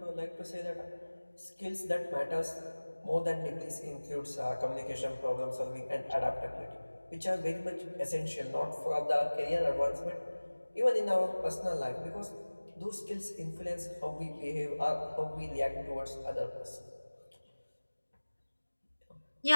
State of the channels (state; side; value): inverted; both; correlation -1.00